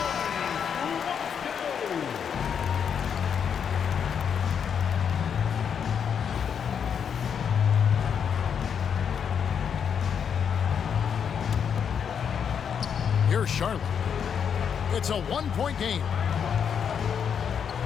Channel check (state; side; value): quieter; right; 7.5 dB